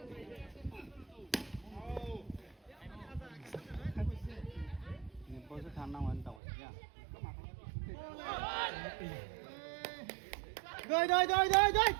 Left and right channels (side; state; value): left; drops out; at 6.4 s